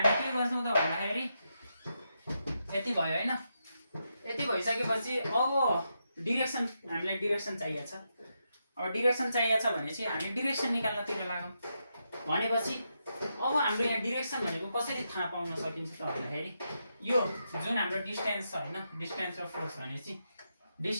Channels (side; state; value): both; inverted; correlation -0.84